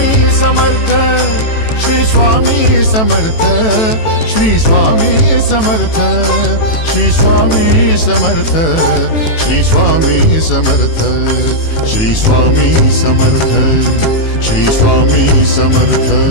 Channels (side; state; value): right; late; 18 ms